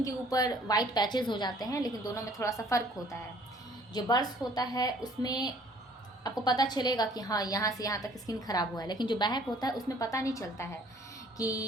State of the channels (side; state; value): both; normal; correlation 0.57